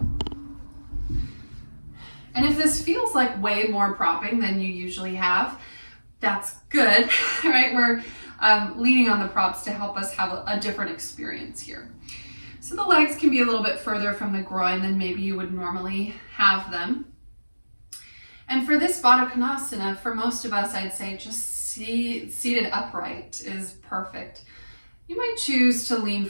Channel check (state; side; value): inverted; both; correlation -1.00